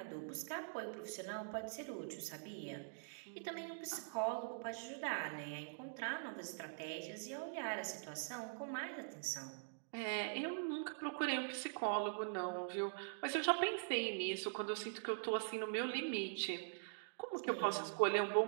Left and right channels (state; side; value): silent; left; digital silence